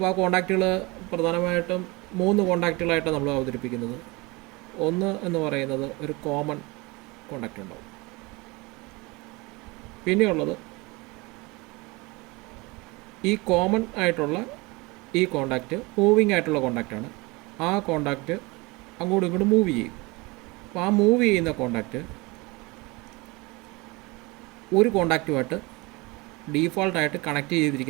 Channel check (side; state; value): left; quieter; 24.9 dB